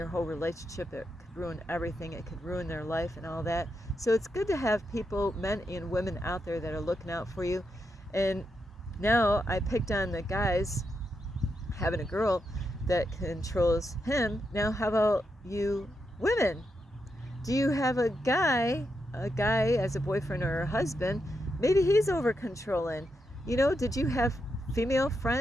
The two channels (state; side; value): normal; both; correlation 0.84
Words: whole relationship, it could ruin everything, it could ruin their life and all that. So it's good to have people, men and women out there, that are looking out for you. And now I picked on the guys having a girl that controls him. Now how about you women? Do you have a guy as a boyfriend or a husband? Maybe he's over controlling. You know, did you have female